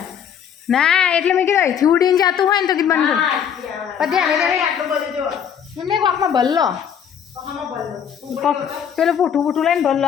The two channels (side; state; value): right; quieter; 8.3 dB